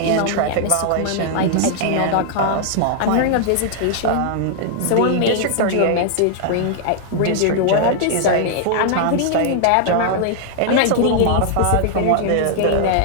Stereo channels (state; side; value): different; both; correlation -0.01